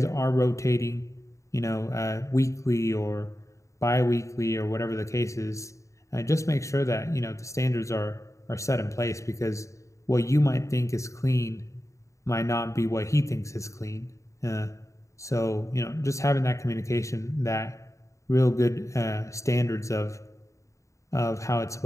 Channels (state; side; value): late; right; 0.15 ms